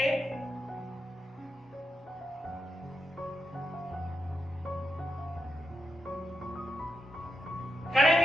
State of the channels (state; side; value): normal; both; correlation 0.85